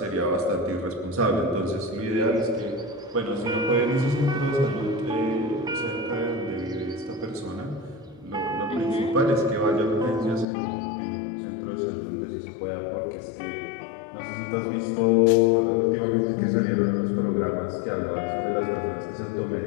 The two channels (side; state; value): right; drops out; at 10.5 s